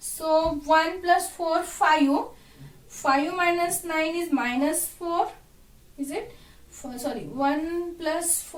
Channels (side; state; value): both; identical; correlation 1.00